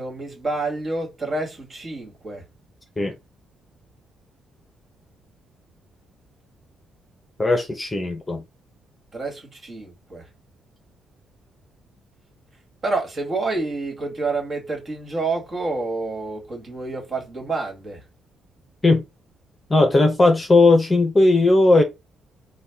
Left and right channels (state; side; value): normal; both; correlation 0.86